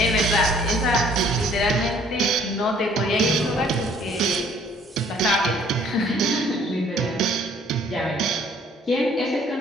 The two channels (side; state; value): both; normal; correlation 0.59